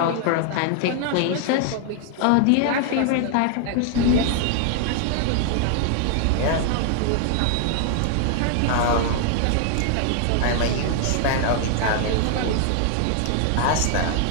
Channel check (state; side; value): different; both; correlation 0.00